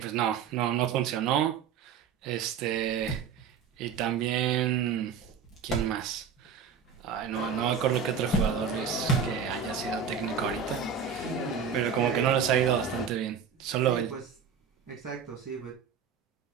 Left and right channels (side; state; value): left; quieter; 6.8 dB